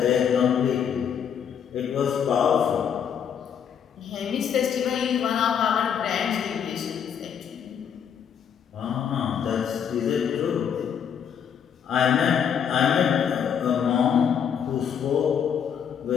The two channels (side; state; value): right; quieter; 8.0 dB